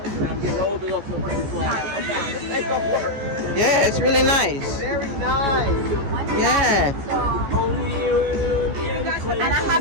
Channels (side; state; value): left; late; 14 ms